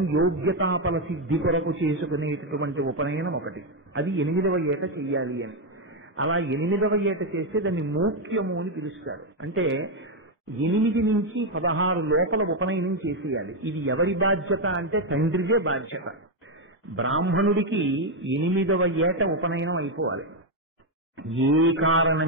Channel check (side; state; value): both; normal; correlation 0.04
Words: యోగ్యతాపల సిద్ధి కొరకు చేసుకునేటటువంటి ఉపనయనం ఒకటి. అది 8వ ఏట చెయ్యాలి అని. అలా 8వ ఏట చేస్తే దాన్ని మోక్యము అని పిలుస్తారు. అంటే 8 నుంచి 16 లోపల ఉపనయనం చేసేయాలి. ఇది ఎవరి బాధ్యత అంటే తండ్రిదే బాధ్యత. బ్రాహ్మణుడికి 8వ ఏట ఉపనయనం అయిపోవాలి. ఏ